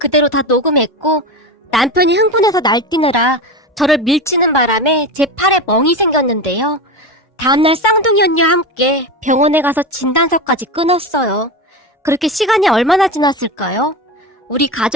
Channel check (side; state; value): both; normal; correlation 0.22